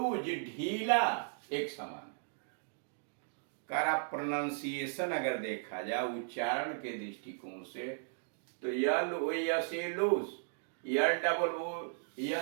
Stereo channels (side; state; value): left; silent; digital silence